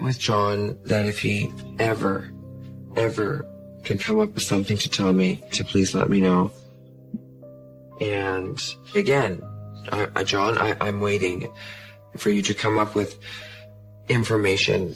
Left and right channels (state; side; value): identical; both; correlation 1.00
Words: with John that if he ever can come up with something to tell me, to please let me know. And again, John, I'm waiting for you to come up with information.